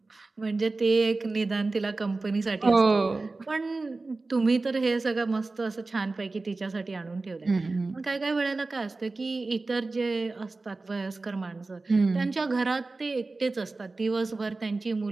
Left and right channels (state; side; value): quieter; left; 3.5 dB